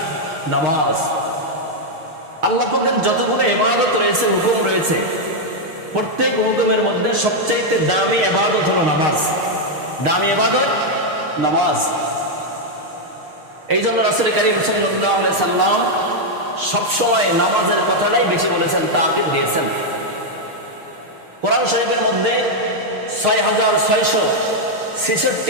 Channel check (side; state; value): left; late; 6.5 ms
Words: নামাজ। আল্লাহ পাকের যতগুলো ইবাদত রয়েছে, হুকুম রয়েছে, প্রত্যেক হুকুমের মধ্যে সবচাইতে দামি ইবাদত হলো নামাজ। দামি ইবাদত নামাজ। এই জন্য রাসূল কারীম সাল্লাল্লাহু আলাইহি সাল্লাম সবসময় নামাজের কথাটাই বেশি বলেছেন, তাকিদ দিয়েছেন। কোরআন শরীফের মধ্যে